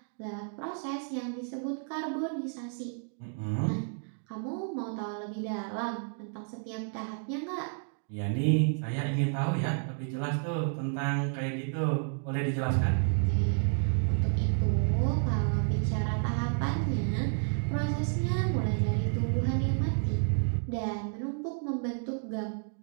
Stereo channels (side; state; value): left; silent; 57 dB below the other